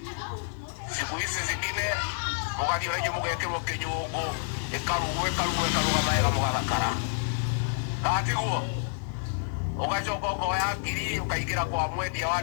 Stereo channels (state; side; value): silent; right; 59 dB below the other